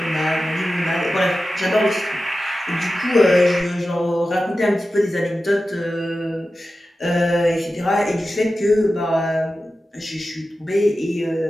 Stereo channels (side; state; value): both; normal; correlation 0.93